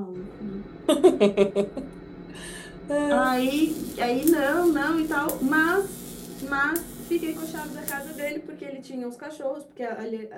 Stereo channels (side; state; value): both; identical; correlation 1.00